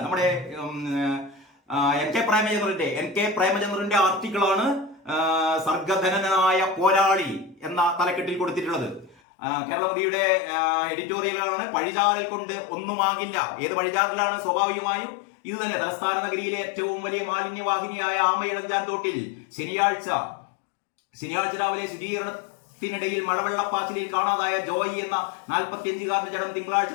നമ്മുടെ എൻ കെ പ്രേമചന്ദ്രന്റെ ആർട്ടിക്കിളാണ് സർഗധനനായ പോരാളി എന്ന തലക്കെട്ടിൽ കൊടുത്തിട്ടുള്ളത്. കേരളമതിയുടെ എഡിറ്റോറിയലാണ്. പഴിചാരൽ കൊണ്ട് ഒന്നുമാകില്ല. ഏത് പഴിചാരലാണ്? സ്വാഭാവികമായും ഇത് തന്നെ. തലസ്ഥാന നഗരിയിലെ ഏറ്റവും വലിയ മാലിന്യവാഹിനിയായ ആമയിഴഞ്ചാൻ തോട്ടിൽ ശനിയാഴ്ച രാവിലെ ശുചീകരണത്തിനിടയിൽ മഴവെള്ളപ്പാച്ചിലിൽ കാണാതായ ജോയി എന്ന 45-കാരന്റെ ജഡം തിങ്കളാഴ്ച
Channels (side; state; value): right; drops out; at 9.2 s